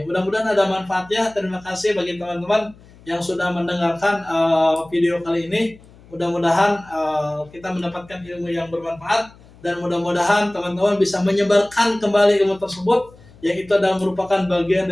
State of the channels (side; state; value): left; noise; hum, 25 dB below the sound